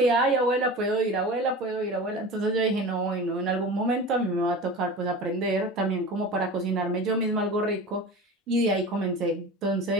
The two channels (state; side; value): normal; both; correlation 0.33